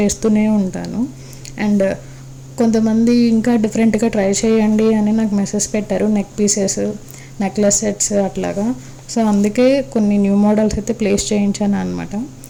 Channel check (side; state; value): both; identical; correlation 1.00